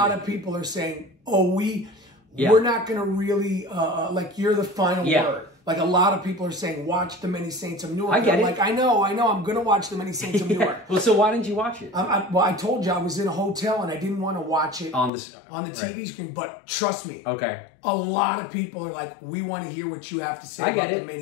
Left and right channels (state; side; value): drops out; right; at 15.1 s